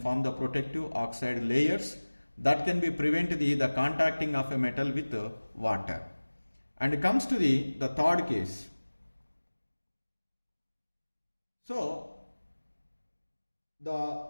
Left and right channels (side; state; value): both; inverted; correlation -1.00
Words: the protective oxide layers that can be prevent the contacting of a metal with water. And it comes to the third case. So the